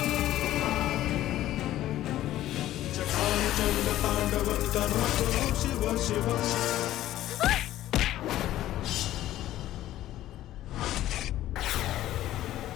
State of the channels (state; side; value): quieter; right; 13.9 dB